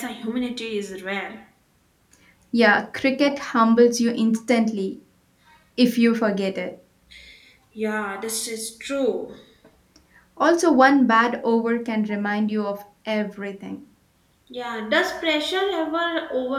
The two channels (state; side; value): identical; both; correlation 1.00